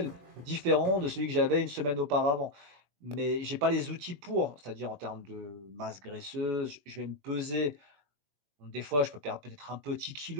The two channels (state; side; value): late; left; 21 ms